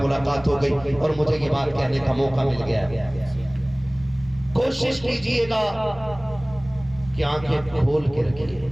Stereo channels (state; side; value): noise; right; rumble, 19 dB below the sound